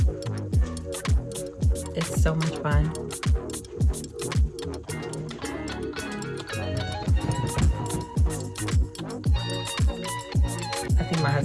It's so much fun. I think my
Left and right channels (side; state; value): both; identical; correlation 1.00